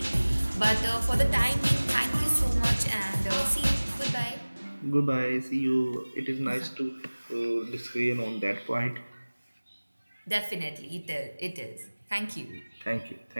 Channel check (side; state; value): both; inverted; correlation -1.00